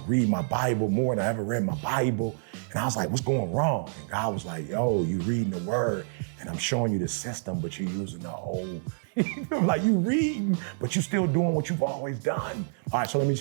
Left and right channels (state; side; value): silent; left; 59 dB below the other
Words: read my Bible more than I ever read my Bible. And I was like, what's going wrong? And God was like, yo, you reading the word and I'm showing you the system, but you're using the old. Like, you reading, but you're still doing what you've always done. All right, so let me